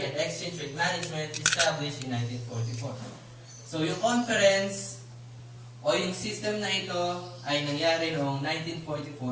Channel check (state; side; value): identical; both; correlation 1.00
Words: and exchange rate management established in 1944. So yung conference o yung system na ito ay nangyari noong